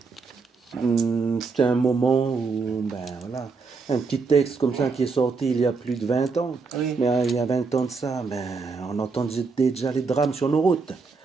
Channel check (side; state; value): left; quieter; 4.6 dB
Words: c'était un moment où, ben voilà, un petit texte comme ça qui est sorti il y a plus de 20 ans. Oui. Mais il y a 20 ans de ça, ben, on entendait déjà les drames sur nos routes.